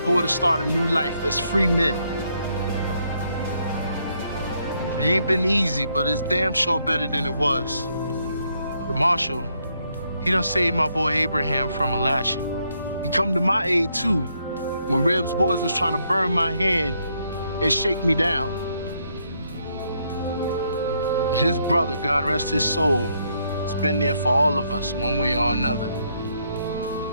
to start a new life as free men. It ain't been easy, but it's damn sure better than it was. The marshal, he done saved my boy Abraham from a lashing. He come to my aid too, when Reb's boys was trying to burn my hand and shake me down. His brother, God rest his soul, has been there for all of us, one way or another.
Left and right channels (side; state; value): both; inverted; correlation -0.74